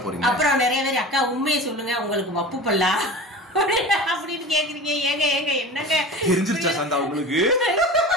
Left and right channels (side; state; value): both; normal; correlation 0.35